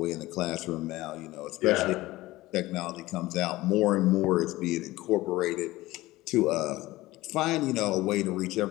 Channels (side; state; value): right; quieter; 18.2 dB